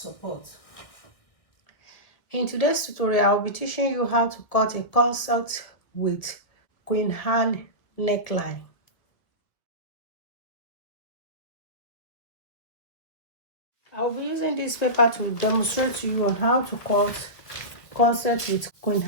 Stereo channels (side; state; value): right; late; 1.8 ms